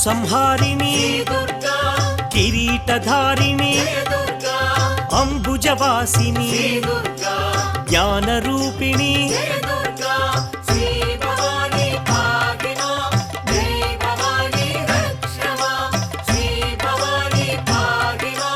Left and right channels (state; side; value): identical; both; correlation 1.00